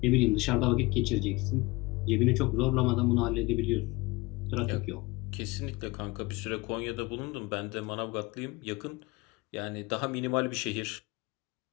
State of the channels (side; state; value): right; quieter; 23.3 dB